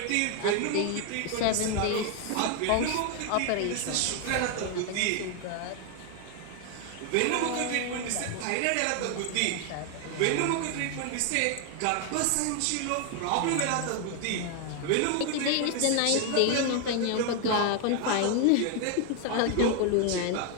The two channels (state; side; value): different; both; correlation 0.01